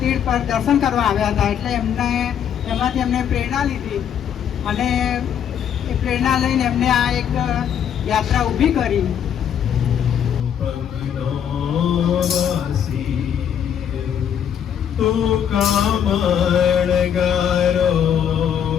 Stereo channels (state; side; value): quieter; right; 8.8 dB